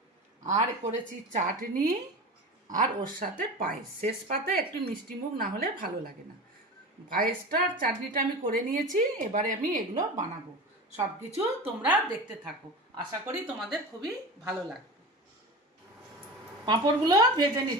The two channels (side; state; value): both; normal; correlation 0.30